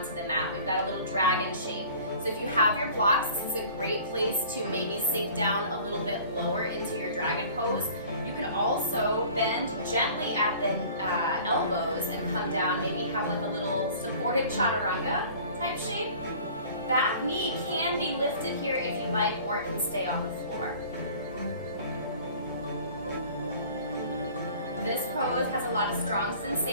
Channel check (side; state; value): both; inverted; correlation -0.47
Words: the mat. We've got a little dragon shape. So if you have your blocks, this is a great place to maybe sink down a little bit lower into your dragon pose. You can also bend gently at the elbows and come down, maybe have like a little supported chaturanga type shape. That knee can be lifted here if you like, or it can stay on the floor. This pose has a lot of strong